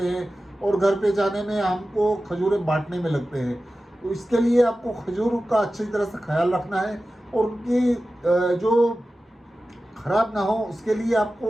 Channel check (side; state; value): both; normal; correlation 0.94